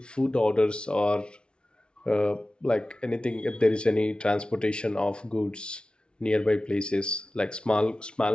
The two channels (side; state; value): right; late; 0.056 ms